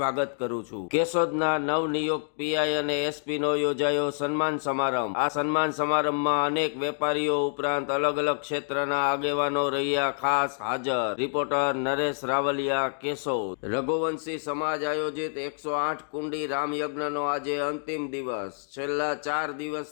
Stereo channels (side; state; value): right; silent; digital silence